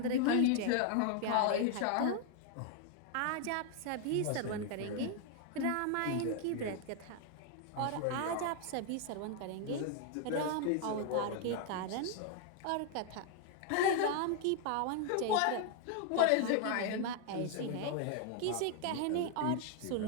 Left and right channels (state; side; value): different; both; correlation 0.00